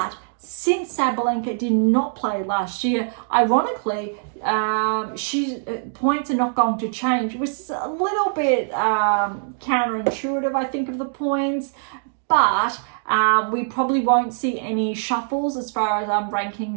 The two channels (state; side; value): silent; left; digital silence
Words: since Sabalenka did not play last year, ironically, points are not going to change, which is a little bit counterintuitive, I think, of the points, but we probably won't see any shuffles as far as